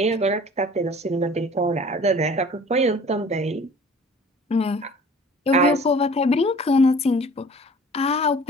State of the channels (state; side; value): normal; both; correlation 0.48